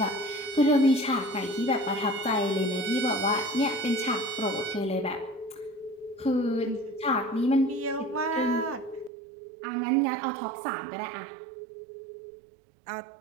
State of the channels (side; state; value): left; drops out; at 9.1 s